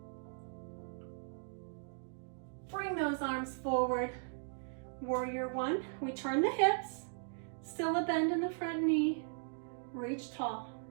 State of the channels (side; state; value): left; silent; digital silence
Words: Bring those arms forward. Warrior one, we turn the hips, still a bend in the front knee, reach tall.